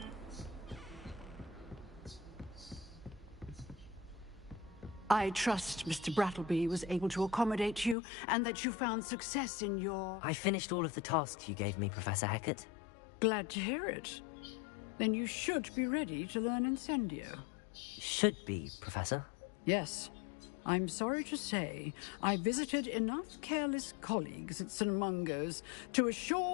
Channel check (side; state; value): right; drops out; at 8.0 s